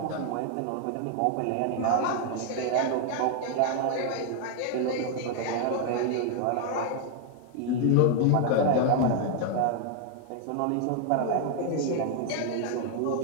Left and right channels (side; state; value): both; different; correlation 0.00